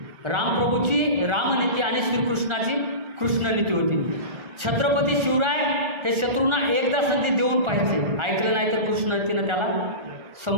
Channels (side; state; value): left; late; 1.4 ms